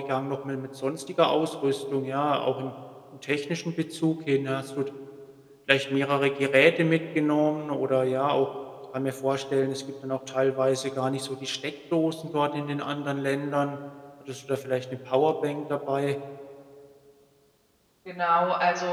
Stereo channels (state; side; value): identical; both; correlation 1.00